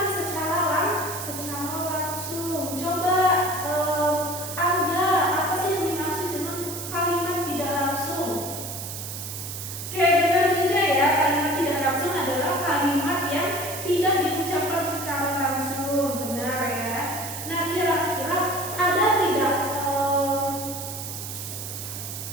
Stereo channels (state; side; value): noise; right; hiss, 8 dB below the sound